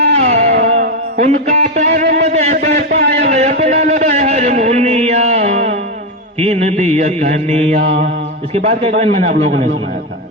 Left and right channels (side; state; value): both; normal; correlation 0.08